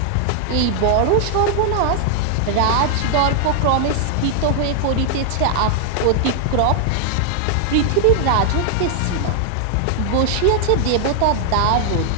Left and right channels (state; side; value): different; both; correlation 0.00